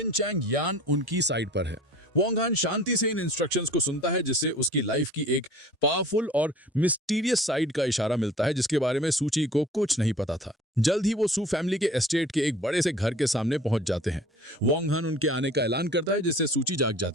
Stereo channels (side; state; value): both; normal; correlation 0.46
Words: चैंग यान उनकी साइड पर है। वोंग हान शांति से इन इंस्ट्रक्शंस को सुनता है, जिससे उसकी लाइफ की एक पावरफुल और मिस्टीरियस साइड का इशारा मिलता है जिसके बारे में सूची को कुछ नहीं पता था। जल्द ही वो सू फैमिली के एस्टेट के एक बड़े से घर के सामने पहुंच जाते हैं। वोंग हान उनके आने का ऐलान करता है, जिससे सूची जाग